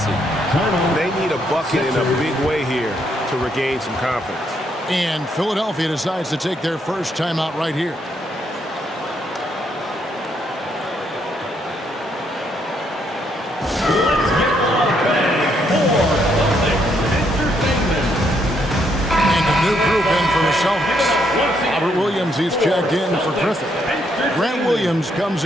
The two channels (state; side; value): normal; both; correlation 0.74